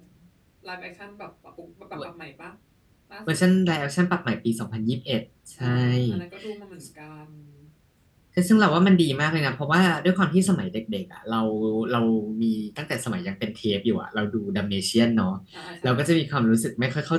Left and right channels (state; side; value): identical; both; correlation 1.00